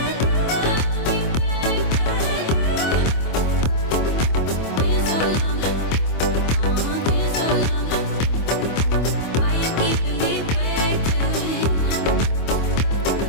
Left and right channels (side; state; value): right; late; 25 ms